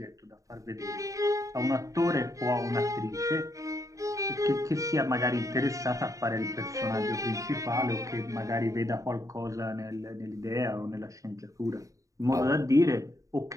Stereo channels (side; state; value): left; late; 0.16 ms